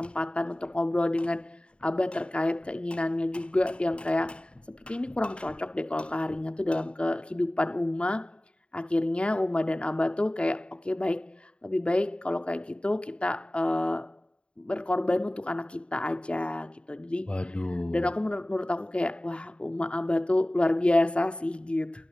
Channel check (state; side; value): late; right; 0.056 ms